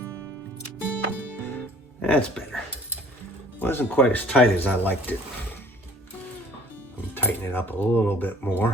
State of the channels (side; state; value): both; normal; correlation 0.52